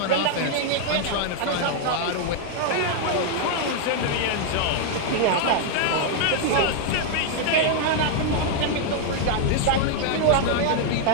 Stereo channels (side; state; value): both; different; correlation 0.00